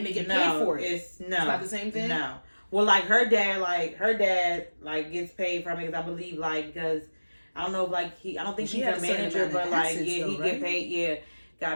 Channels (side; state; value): both; inverted; correlation -1.00